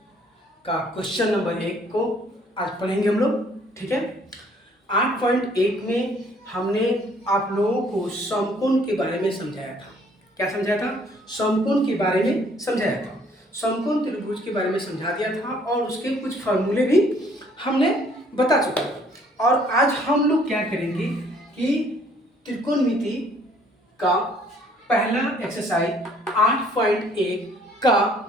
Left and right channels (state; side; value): normal; both; correlation 0.60